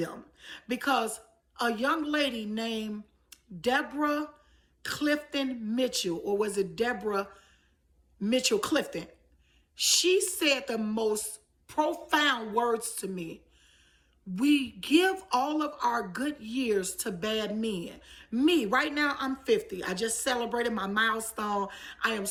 Because a young lady named Deborah Clifton Mitchell, or was it Deborah Mitchell Clifton? She said the most profound words to me. We give all of our good years to bad men. Me, right now, I'm 50. I just celebrated my milestone. I am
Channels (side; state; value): both; identical; correlation 1.00